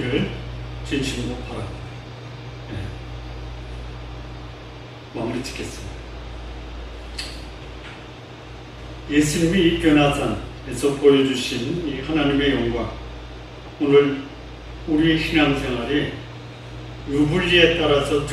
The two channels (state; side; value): identical; both; correlation 1.00